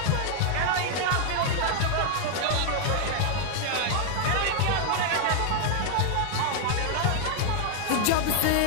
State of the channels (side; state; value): both; different; correlation 0.00